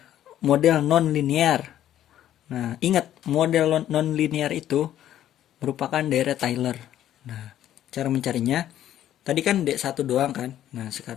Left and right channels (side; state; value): right; quieter; 11.8 dB